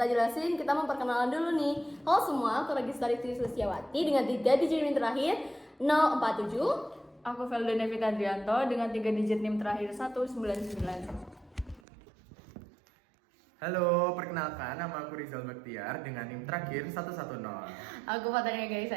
jelasin, kita memperkenalan dulu nih. Halo semua, aku Registari Sulistiawati dengan 3 digit NIM terakhir 047. Aku Velda Nevita Andrianto dengan 3 digit NIM terakhir 199. Halo, perkenalkan nama aku Rizal Baktiar dengan NIM terakhir 110. Aku Fatania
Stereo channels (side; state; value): left; drops out; at 11.8 s